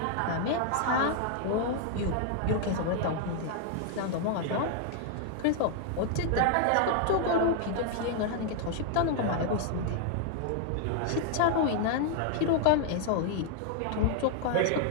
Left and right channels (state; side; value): different; both; correlation 0.00